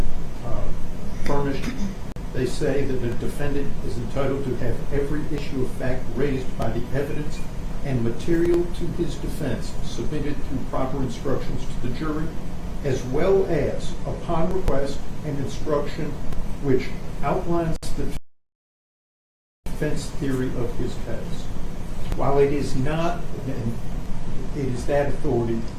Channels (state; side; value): identical; both; correlation 1.00